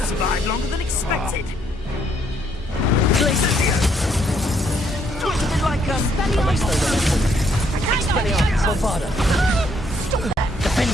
Survived longer than expected. Expelliarmus, Bombarda.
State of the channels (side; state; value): both; normal; correlation 0.70